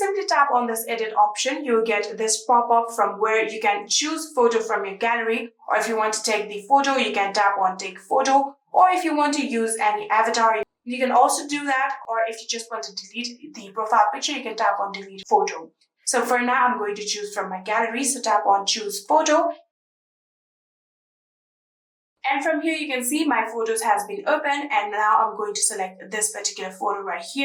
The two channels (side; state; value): both; identical; correlation 1.00